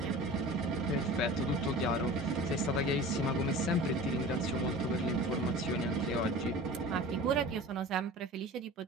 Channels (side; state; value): both; normal; correlation 0.38